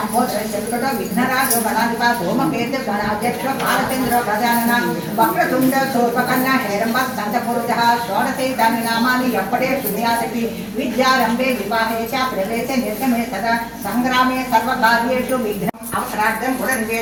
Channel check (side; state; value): both; identical; correlation 1.00